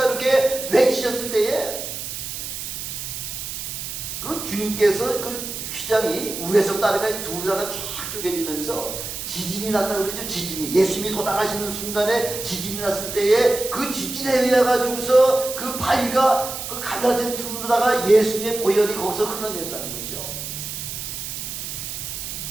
이렇게 외치셨을 때에 그 주님께서 그 휘장이 위에서 따르가 둘다가 쫙 쪼개지면서 지진이 났다고 그러죠. 지진이 예수님이 돌아가시는 순간에 지진이 났을 때에 그 지진에 의해 가지고서 그 바위가 그 갈라진 틈으로다가 예수님의 보혈이 거기서 흘러내렸다는 거죠.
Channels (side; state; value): right; noise; hiss, 7 dB below the sound